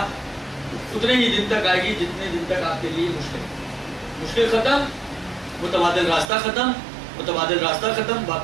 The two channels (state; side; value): drops out; left; at 6.3 s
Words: اتنے ہی دن تک آئے گی جتنے دن تک آپ کے لیے مشکل ختم، متبادل راستہ ختم، متبادل راستہ ختم،